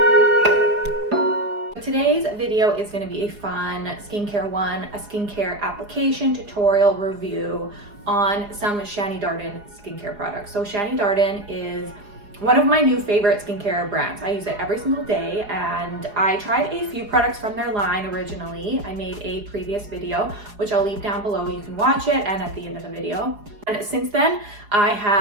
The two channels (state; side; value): late; left; 4.8 ms